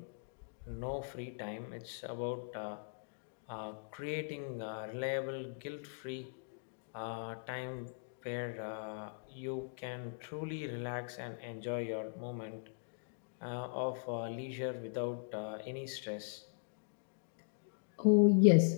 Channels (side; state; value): right; silent; digital silence